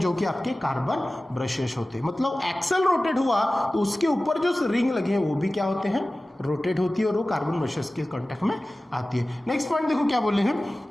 जो कि आपके कार्बन ब्रशेस होते हैं। मतलब एक्सल रोटेट हुआ तो उसके ऊपर जो रिंग लगे हैं वो भी क्या होते हैं, रोटेट होती है, और वो कार्बन ब्रशेस के कांटेक्ट में आती है। नेक्स्ट पॉइंट देखो क्या बोले हैं,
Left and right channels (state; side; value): normal; both; correlation 0.97